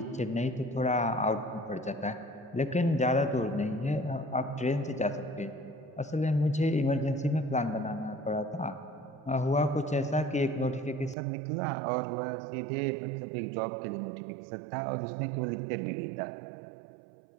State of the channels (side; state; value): left; drops out; at 11.2 s